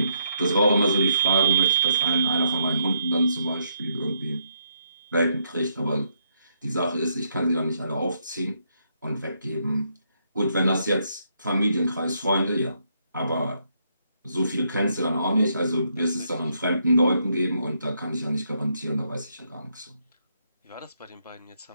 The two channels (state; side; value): inverted; both; correlation -0.74